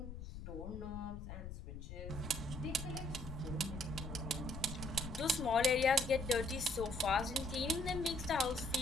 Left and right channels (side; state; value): left; noise; rumble, 9 dB below the sound